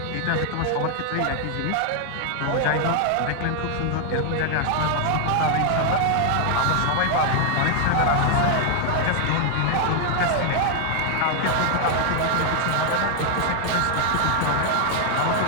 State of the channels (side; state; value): both; different; correlation 0.00